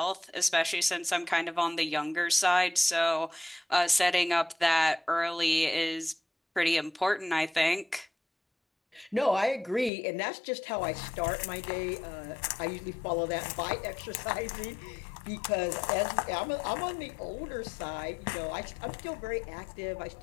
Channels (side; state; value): right; drops out; at 9.9 s